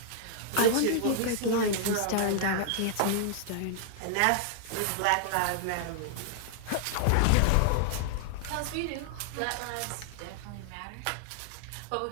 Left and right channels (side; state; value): both; different; correlation -0.01